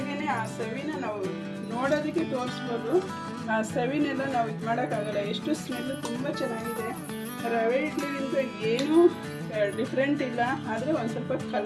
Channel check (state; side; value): identical; both; correlation 1.00